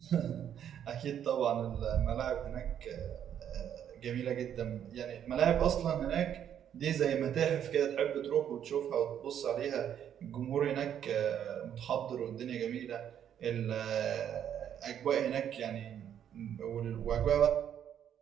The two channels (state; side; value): quieter; left; 9.5 dB